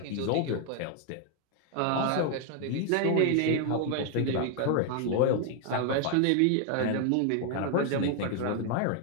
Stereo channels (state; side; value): different; both; correlation 0.00